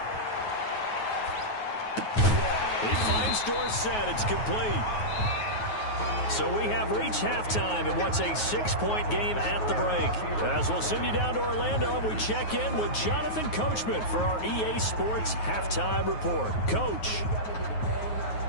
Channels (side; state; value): right; late; 9.4 ms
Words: He finds Dorsett. It's complete. So we have reached halftime in what's a 6-point game at the break. As we'll send you down to Orlando, we check in with Jonathan Coachman for our EA Sports Halftime Report. Coach.